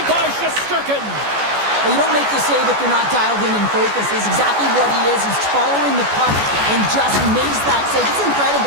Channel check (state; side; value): late; left; 14 ms